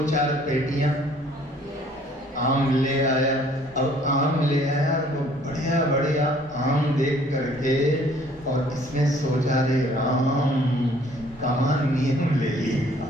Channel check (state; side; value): normal; both; correlation 0.58